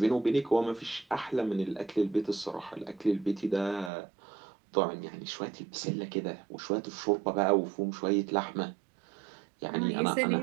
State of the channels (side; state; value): left; drops out; at 3.9 s